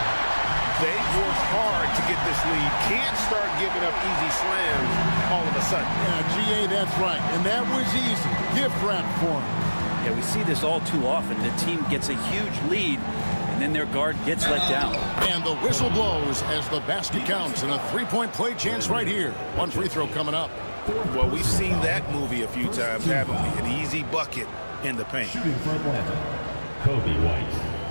They've worked hard to get this lead. Can't start giving up easy slams all of a sudden. Yeah, GA, that's right. And that was easy. Gift wrap for him. Yeah, we see this all too often. The team gets a huge lead, and then their guard gets let down. And the whistle blows as the basket counts, and a three-point play chance right here. One free throw coming up. Well, we've seen that movie a few times, haven't we? An easy bucket in the paint. Shooting for Atlanta, Kobe White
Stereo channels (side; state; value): both; inverted; correlation -1.00